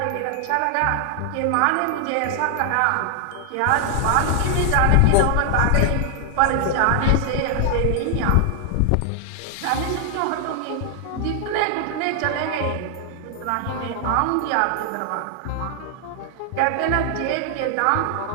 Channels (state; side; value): different; both; correlation 0.00